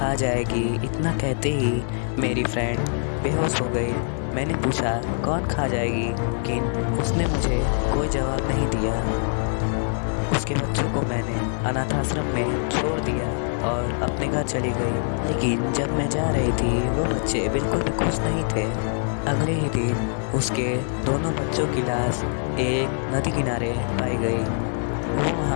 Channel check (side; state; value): right; silent; 60 dB below the other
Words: जाएगी। इतना कहते ही मेरी फ्रेंड बेहोश हो गई। मैंने पूछा कौन खा जाएगी, लेकिन उसने मुझे कोई जवाब नहीं दिया। उसके बच्चों को मैंने अनाथ आश्रम में छोड़ दिया और अपने घर चली गई। लेकिन जब मैं जा रही थी वो बच्चे बिल्कुल भी खुश नहीं थे। अगले ही दिन उसके दोनों बच्चों की लाश एक नदी किनारे पाई गई। वो